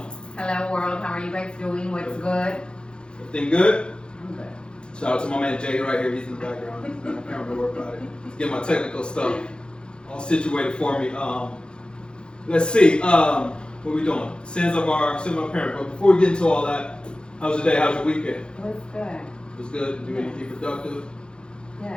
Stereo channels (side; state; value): right; late; 0.051 ms